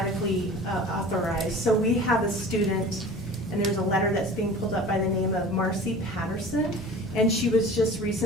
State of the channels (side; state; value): both; normal; correlation 0.40